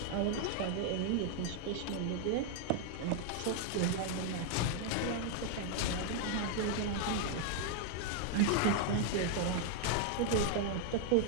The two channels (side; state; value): both; different; correlation 0.00